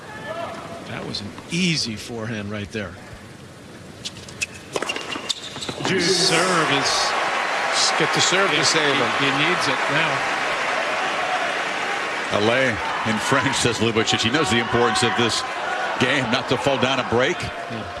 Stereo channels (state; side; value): identical; both; correlation 1.00